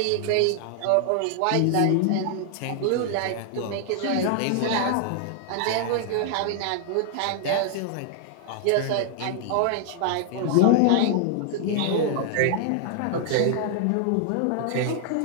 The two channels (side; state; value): both; different; correlation 0.00